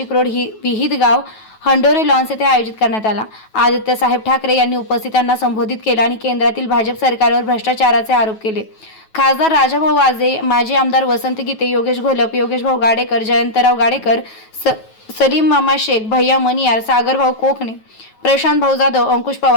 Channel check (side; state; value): right; late; 9.2 ms